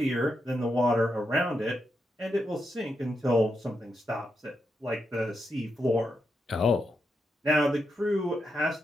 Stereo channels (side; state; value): both; normal; correlation 0.84